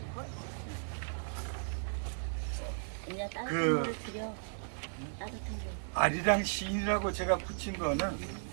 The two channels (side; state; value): left; silent; digital silence